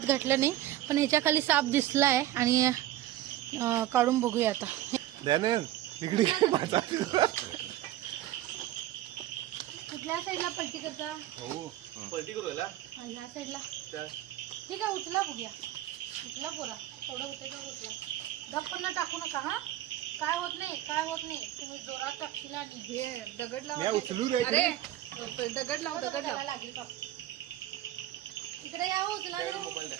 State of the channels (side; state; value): left; quieter; 14.0 dB